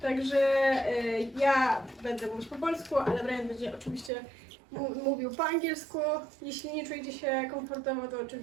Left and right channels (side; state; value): left; drops out; at 4.1 s